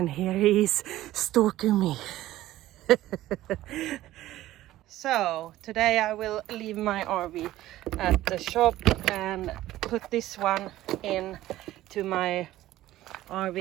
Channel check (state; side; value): quieter; left; 15.1 dB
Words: here he is stalking me. So today I will leave my RV at the shop and put this one in to my